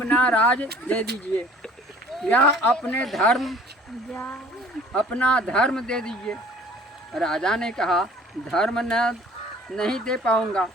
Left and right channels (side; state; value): both; normal; correlation 0.51